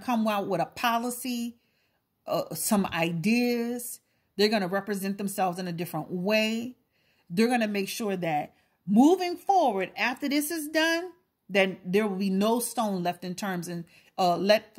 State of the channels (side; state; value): both; identical; correlation 1.00